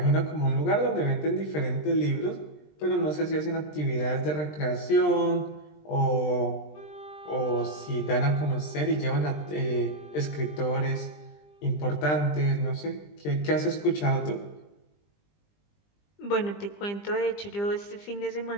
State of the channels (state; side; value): late; right; 20 ms